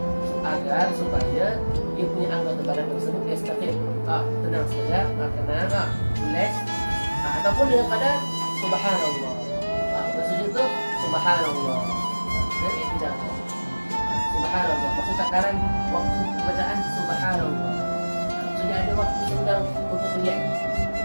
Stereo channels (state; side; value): inverted; both; correlation -1.00